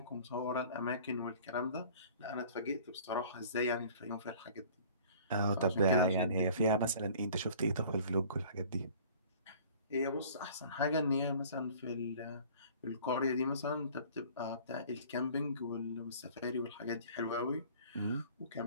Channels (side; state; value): both; inverted; correlation -0.49